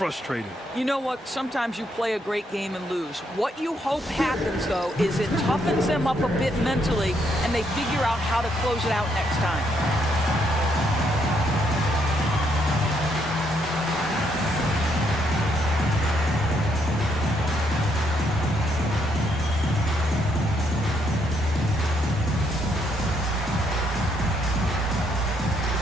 You know what? Sometimes you play a great game and lose. What you hope happens, though, is it toughens them up a bit mentally, and they figure out how to close it out next time.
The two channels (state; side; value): normal; both; correlation 0.74